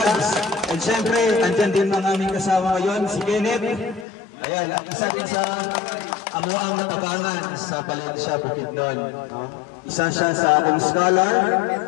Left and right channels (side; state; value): right; drops out; at 4.0 s